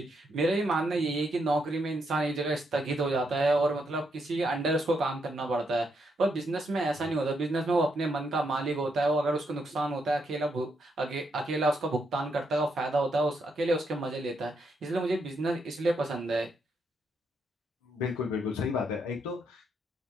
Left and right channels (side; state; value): both; normal; correlation 0.78